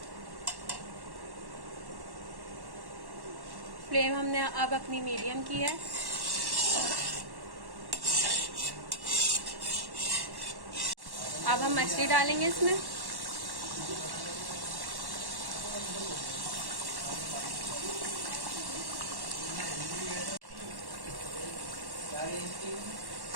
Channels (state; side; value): late; left; 1.1 ms